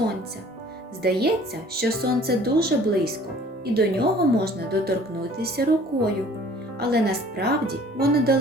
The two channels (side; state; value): both; normal; correlation 0.52